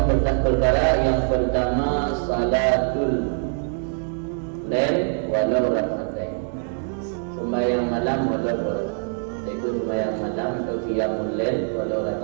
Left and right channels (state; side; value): silent; left; digital silence